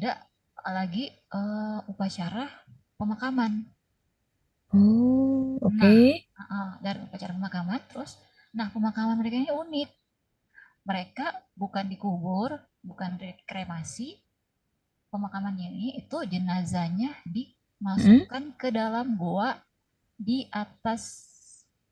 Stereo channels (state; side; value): identical; both; correlation 1.00